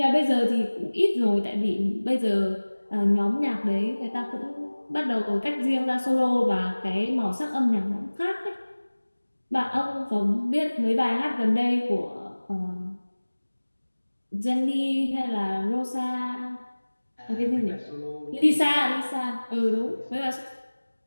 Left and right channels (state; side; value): inverted; both; correlation -1.00